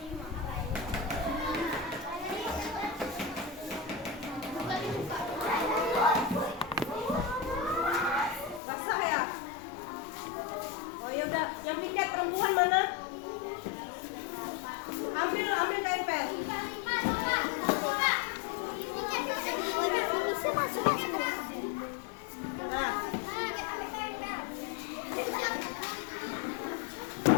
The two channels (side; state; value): right; drops out; at 8.6 s